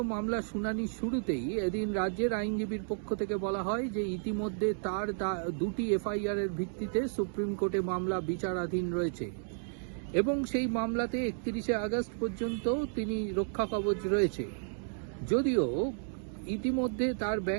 মামলার শুনানির শুরুতেই এদিন রাজ্যের আইনজীবীর পক্ষ থেকে বলা হয় যে ইতিমধ্যে তার 2টি এফআইআর এর ভিত্তিতে সুপ্রিম কোর্টে মামলা বিচারাধীন রয়েছে এবং সেই মামলাতে 31শে আগস্ট পর্যন্ত তিনি রক্ষা কবচ রয়েছে। যদিও ইতিমধ্যে তার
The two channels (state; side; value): silent; left; digital silence